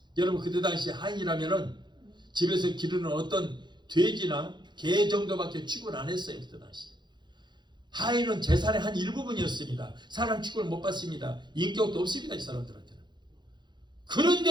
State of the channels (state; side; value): late; left; 0.21 ms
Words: 여러분 그때 당시 하인이라면은 집에서 기르는 어떤 돼지나 개 정도밖에 취급을 안 했어요. 그때 당시 하인은 재산의 한 일부분이었습니다. 사람 취급을 못 받습니다. 인격도 없습니다. 이 사람들한테는.